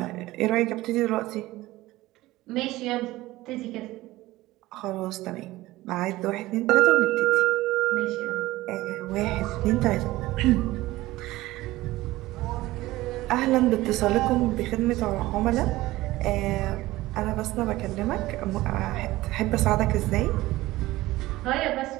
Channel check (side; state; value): left; quieter; 17.8 dB